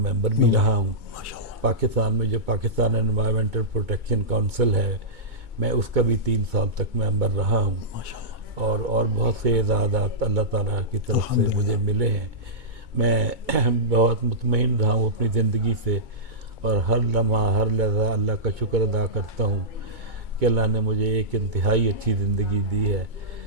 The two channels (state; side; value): late; left; 2.2 ms